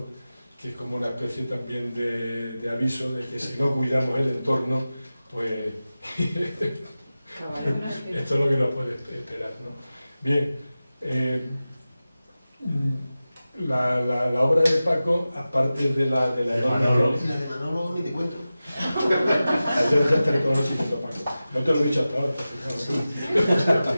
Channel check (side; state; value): both; inverted; correlation -0.95